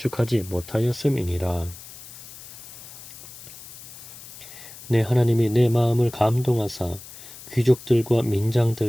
못하였음이니라. 내 하나님이 내 마음을 감동하사 귀족들과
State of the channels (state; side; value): noise; left; hiss, 16 dB below the sound